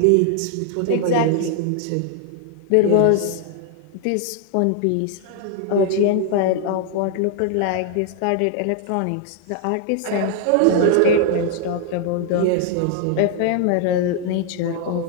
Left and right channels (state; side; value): different; both; correlation 0.00